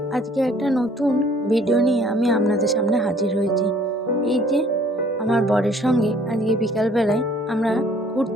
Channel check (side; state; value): both; normal; correlation 0.58